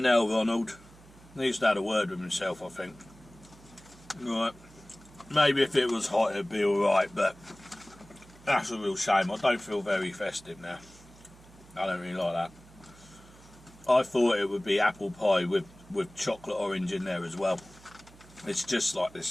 hell, Ronald. Needs to have a word with himself, I think. Right. Maybe if it was hot it'd be alright, but that's a real shame. I don't feel very festive now. I don't really like that. I thought it would be apple pie with chocolate orange in there as well. It's just like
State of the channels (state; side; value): noise; right; hum, 23 dB below the sound